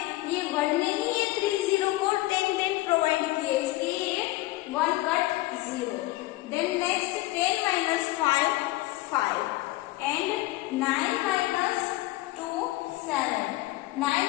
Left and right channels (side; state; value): right; quieter; 18.6 dB